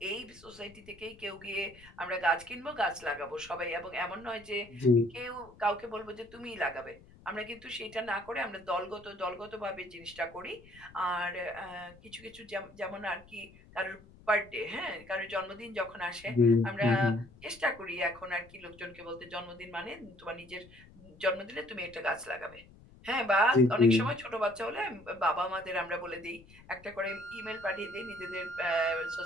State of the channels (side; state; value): left; noise; rumble, 23 dB below the sound